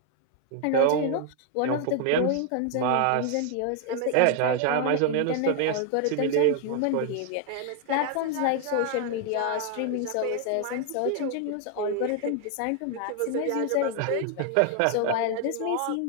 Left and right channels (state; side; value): different; both; correlation 0.00